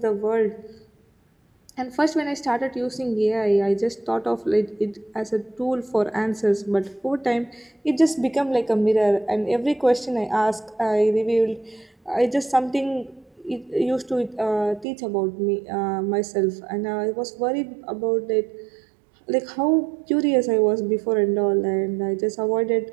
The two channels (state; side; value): drops out; left; at 14.9 s